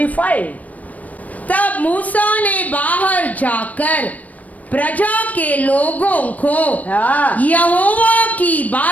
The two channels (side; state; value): right; late; 0.072 ms